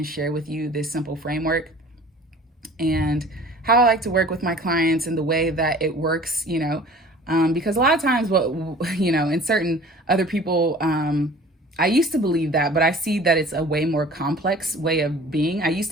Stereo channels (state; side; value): normal; both; correlation 0.46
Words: share with you this simple framework and how I like to work with my clients and the way that it works, because a lot of times in certain other people, I used to believe that, but I see that it's a way more complex way of being. I used